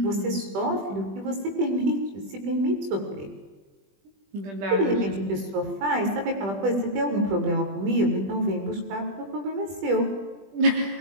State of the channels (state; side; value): late; left; 20 ms